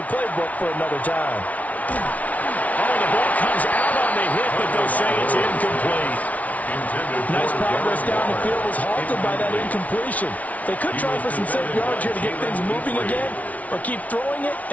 playbook for another time. Oh, the ball comes out on the hit, but they'll say it's incomplete. Nice progress down the field was halted by that incompletion. They could try for some safe yards here to get things moving again, or keep throwing it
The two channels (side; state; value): right; late; 0.070 ms